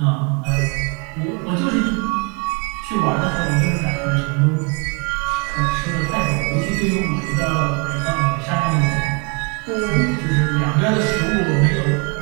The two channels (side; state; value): left; quieter; 34.2 dB